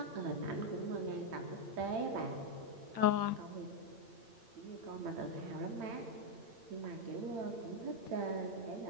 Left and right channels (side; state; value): left; late; 8.8 ms